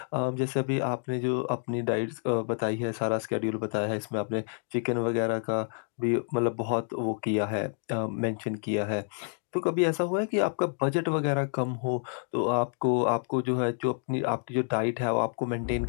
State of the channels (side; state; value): right; silent; 59 dB below the other